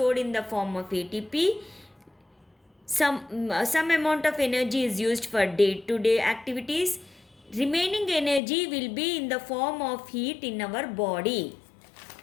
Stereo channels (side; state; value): right; drops out; at 8.4 s